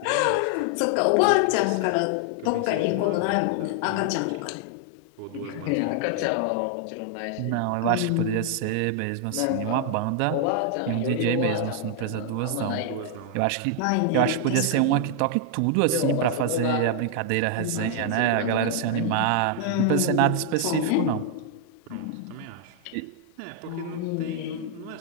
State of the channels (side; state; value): both; different; correlation 0.00